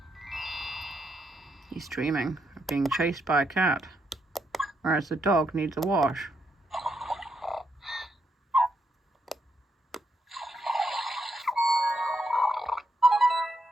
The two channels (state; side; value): normal; both; correlation 0.79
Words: He's dreaming of being chased by a cat, whereas the dog needs a wash.